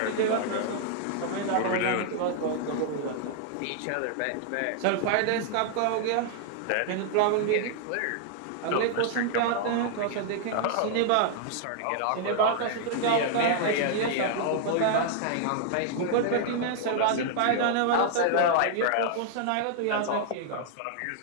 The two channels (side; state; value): both; different; correlation -0.01